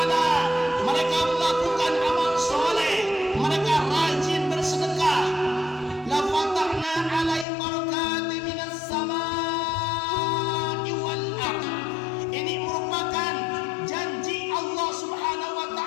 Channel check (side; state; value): right; drops out; at 7.5 s